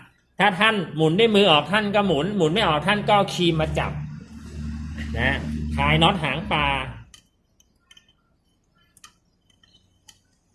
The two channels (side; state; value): both; identical; correlation 1.00